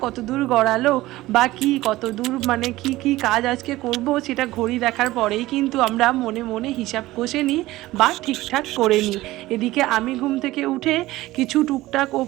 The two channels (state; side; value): quieter; left; 17.5 dB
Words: কত দূর গড়ালো, বা কি কত দূর মানে কি কাজ আজকে করব, সেটা ঘড়ি দেখার পরেই কিন্তু আমরা মনে মনে হিসাব কষে নিই বা ঠিকঠাক করে নিই। এদিকে আমি ঘুম থেকে উঠে কিছু টুকটাক